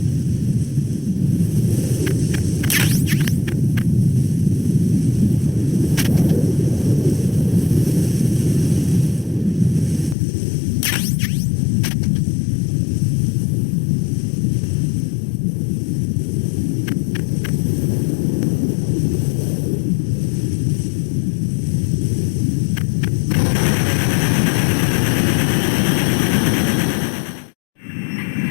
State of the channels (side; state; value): right; drops out; at 10.2 s